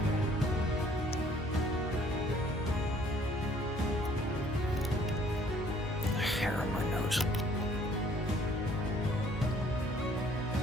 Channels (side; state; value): both; normal; correlation 0.59